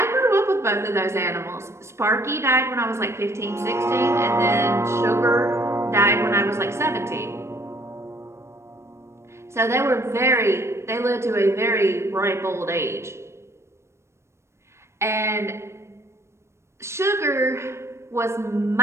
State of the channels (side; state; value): left; late; 0.13 ms